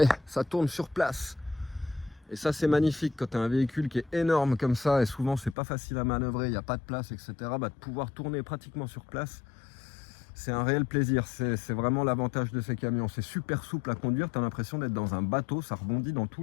ça tourne sur place. Et ça, c'est magnifique quand tu as un véhicule qui est énorme comme ça. Et souvent, c'est pas facile à manœuvrer, il n'y a pas de place, etc. De pouvoir tourner pratiquement sur place. C'est un réel plaisir, c'est vraiment l'avantage de ces camions. C'est super souple à conduire, tu as l'impression d'être dans un bateau, ça rebondit dans tous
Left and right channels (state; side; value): drops out; right; at 5.6 s